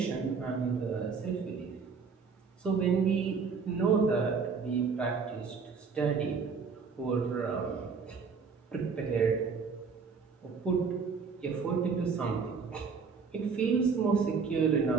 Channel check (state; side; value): quieter; left; 5.4 dB